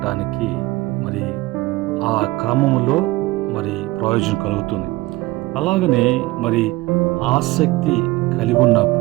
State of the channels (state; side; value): quieter; left; 19.8 dB